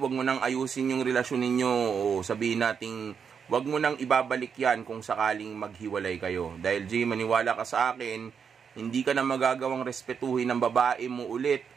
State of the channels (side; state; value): left; quieter; 6.7 dB